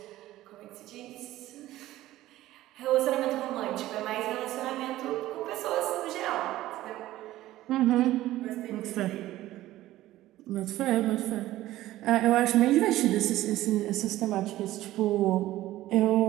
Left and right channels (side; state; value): left; quieter; 15.4 dB